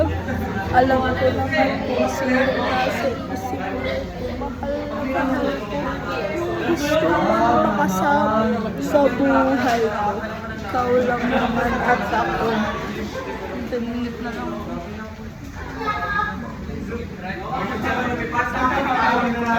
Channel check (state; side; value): identical; both; correlation 1.00